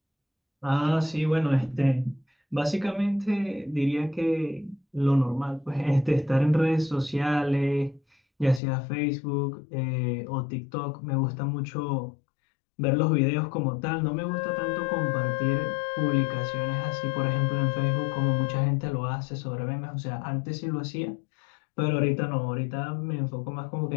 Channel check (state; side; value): drops out; right; at 8.6 s